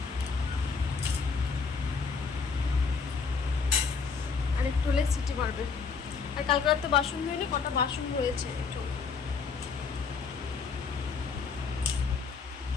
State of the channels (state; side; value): quieter; right; 5.1 dB